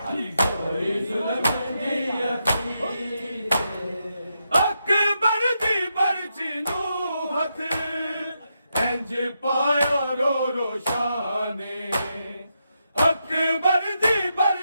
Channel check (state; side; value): inverted; both; correlation -0.84